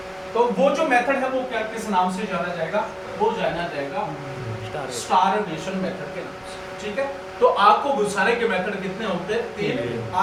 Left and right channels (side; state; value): both; identical; correlation 1.00